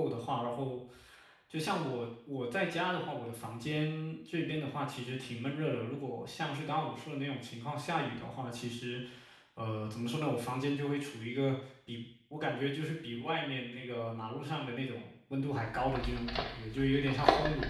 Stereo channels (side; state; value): both; identical; correlation 1.00